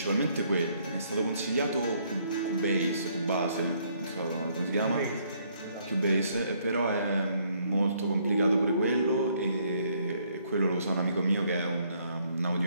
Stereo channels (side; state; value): both; inverted; correlation -0.68